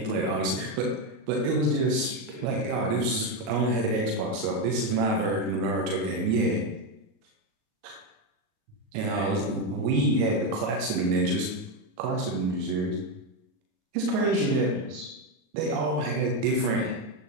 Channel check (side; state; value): left; late; 38 ms